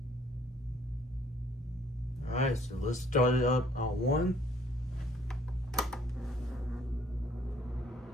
Alright, so let's start it up on 1.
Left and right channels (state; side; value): normal; both; correlation 0.60